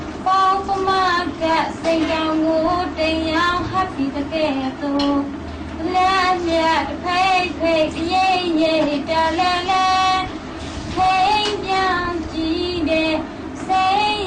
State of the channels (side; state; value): both; identical; correlation 1.00